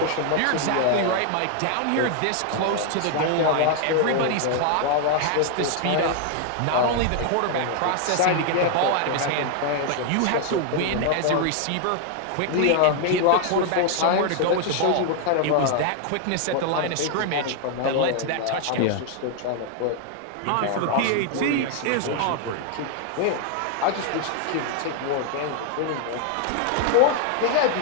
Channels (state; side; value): different; both; correlation 0.00